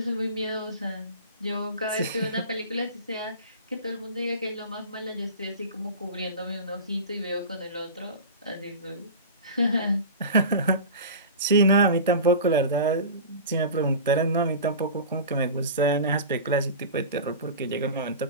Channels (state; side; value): inverted; both; correlation -0.32